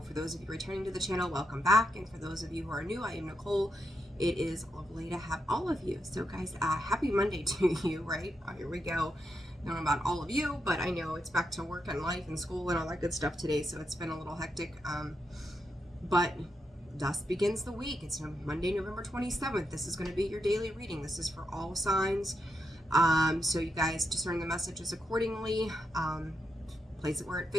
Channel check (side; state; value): both; normal; correlation 0.83